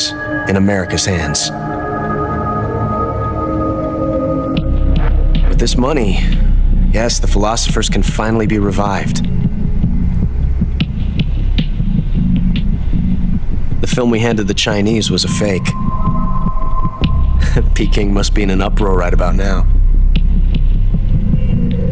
in America's hands. With this money, yes, the philosophers can finally be revived. The film we handed the Chinese was a fake. Peking must be in an uproar right about now.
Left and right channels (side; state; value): both; identical; correlation 1.00